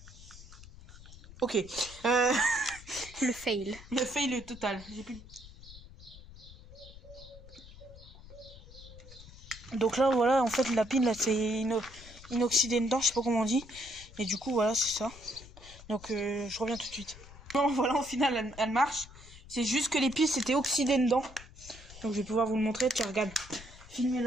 Ok. Le fail. Le fail total. J'ai plus. Donc là voilà en fait la pile là c'est inoxydé dedans, je sais pas comment on dit. Et du coup voilà c'est ça. Donc je reviens tout de suite. Bon voilà au final elle marche. C'est juste que les piles c'était oxydé dedans. Donc je vais pouvoir vous le montrer. Tiens regarde.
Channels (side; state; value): left; noise; rumble, 18 dB below the sound